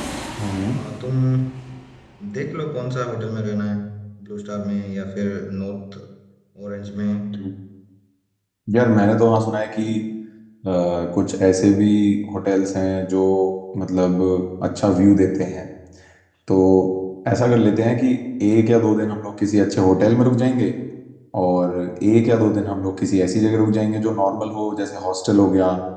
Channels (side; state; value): both; identical; correlation 1.00